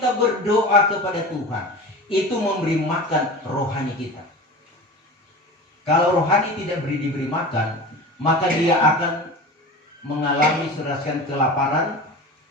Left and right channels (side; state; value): both; normal; correlation 0.33